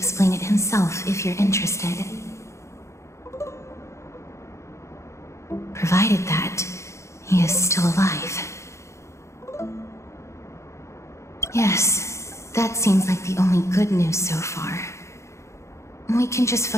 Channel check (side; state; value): right; late; 0.14 ms